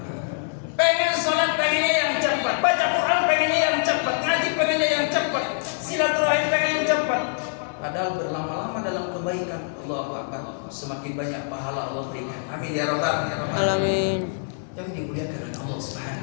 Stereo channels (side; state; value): right; silent; digital silence